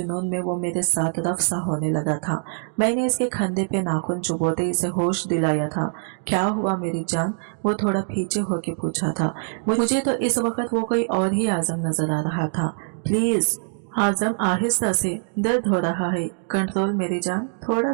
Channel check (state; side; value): silent; left; digital silence